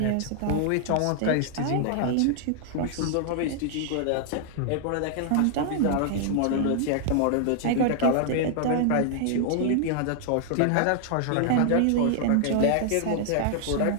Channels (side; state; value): both; different; correlation 0.00